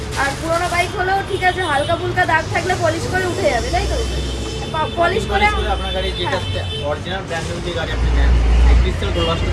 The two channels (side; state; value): both; identical; correlation 1.00